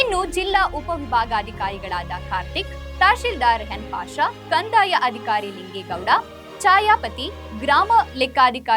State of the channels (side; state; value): both; identical; correlation 1.00